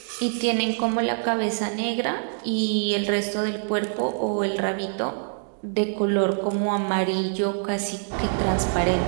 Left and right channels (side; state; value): left; silent; digital silence